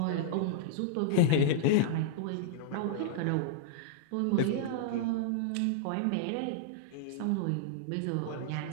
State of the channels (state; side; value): different; both; correlation -0.01